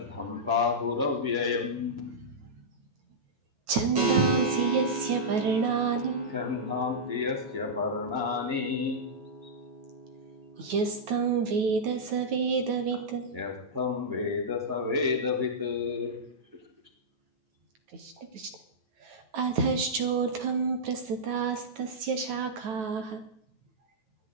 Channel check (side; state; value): left; late; 9.2 ms